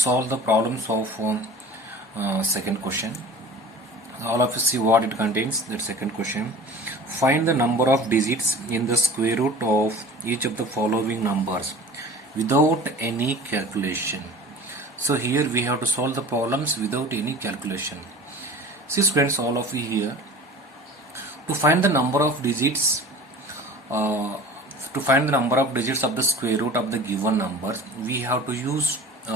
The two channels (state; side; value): normal; both; correlation 0.40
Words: the problems of second question. All of you see what it contains. That second question. Find the number of digits in the square root of each of the following numbers without any calculation. So here we have to solve the problems without any calculation. See students, all of you here, to find the number of digits uh, of the square root of the given numbers, we have to use